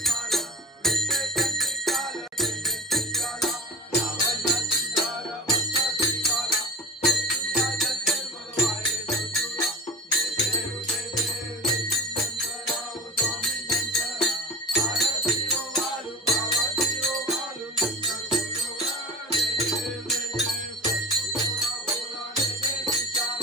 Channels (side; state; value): both; normal; correlation 0.34